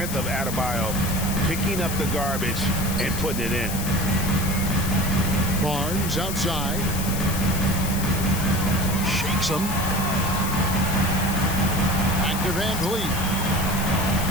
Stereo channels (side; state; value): left; noise; hiss, 7 dB below the sound